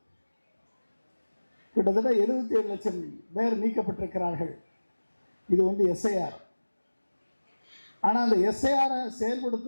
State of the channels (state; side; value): inverted; both; correlation -1.00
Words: கிட்டத்தட்ட 77 லட்சம் பேர் நீக்கப்பட்டிருக்கிறார்கள். இது வந்து SIR. ஆனால் அந்த SIR